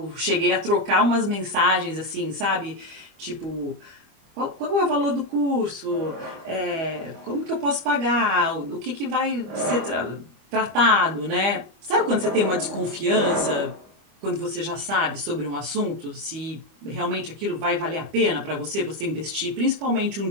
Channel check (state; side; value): late; left; 25 ms